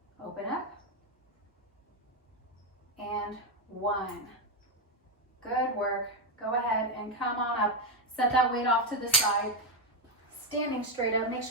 Open up. And one. Good work. Go ahead and come on up. Set that weight off to the side. Standing straight up. Make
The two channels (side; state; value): both; normal; correlation 0.07